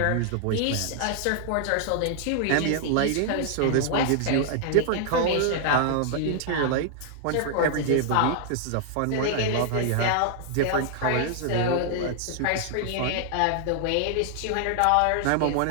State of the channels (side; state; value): both; different; correlation -0.01